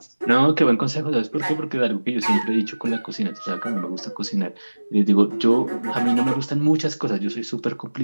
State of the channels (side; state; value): both; inverted; correlation -1.00